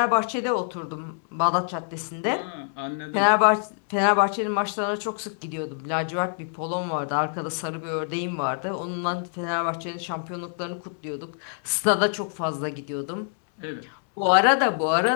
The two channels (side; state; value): right; silent; digital silence